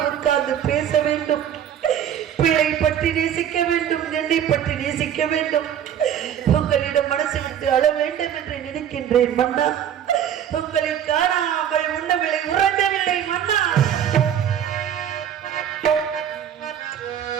உட்கார்ந்து பேச வேண்டும். பிள்ளை பற்றி நேசிக்க வேண்டும், என்னை பற்றி நேசிக்க வேண்டும். உங்களிடம் மனசு விட்டு அழ வேண்டும் என்று நினைக்கின்றேன் மன்னா. உங்களை காணாமல் உண்ணவில்லை, உறங்கவில்லை மன்னா.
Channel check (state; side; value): quieter; left; 9.6 dB